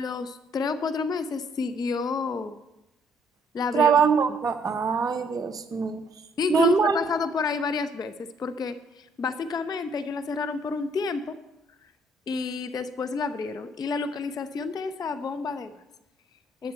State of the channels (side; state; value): both; normal; correlation 0.65